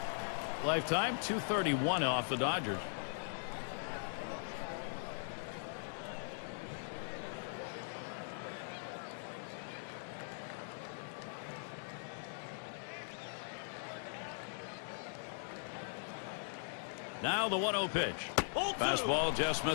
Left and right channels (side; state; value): right; silent; digital silence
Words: Lifetime 231 off the Dodgers. Now the 1-0 pitch. Fastball just